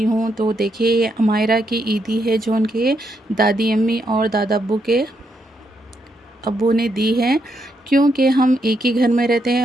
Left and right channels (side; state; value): both; normal; correlation 0.79